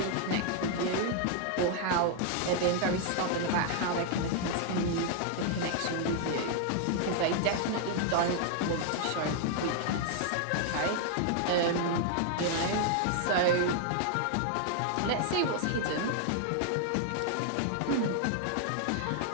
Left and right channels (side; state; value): both; different; correlation 0.00